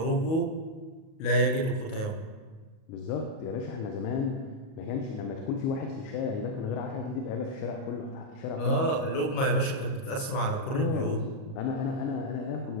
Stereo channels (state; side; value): late; right; 37 ms